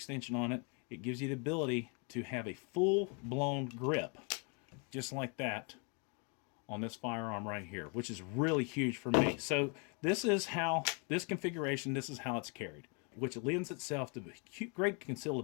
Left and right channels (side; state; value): right; quieter; 35.8 dB